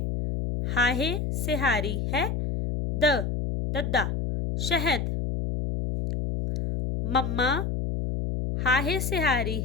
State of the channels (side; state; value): left; noise; hum, 1 dB below the sound